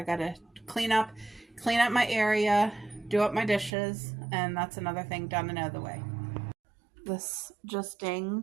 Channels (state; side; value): drops out; left; at 3.7 s